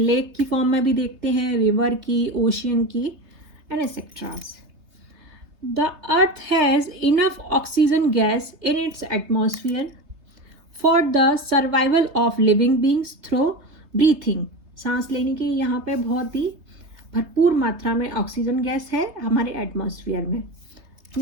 की फॉर्म में भी देखते हैं, रिवर की, ओशियन की, and etceteras. The earth has enough oxygen gas in its atmosphere for the survival of living beings through breathing. सांस लेने के यहाँ पे बहुत ही भरपूर मात्रा में ऑक्सीजन गैस है हमारे एटमॉस्फेयर में।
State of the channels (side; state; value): left; late; 3.3 ms